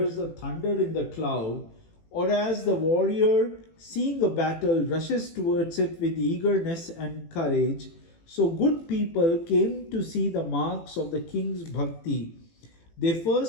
the thunder in the cloud, or as the warrior, seeing a battle, rushes towards it with eagerness and courage, so good people came to see the marks of the king's bhakti. They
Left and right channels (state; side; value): late; right; 18 ms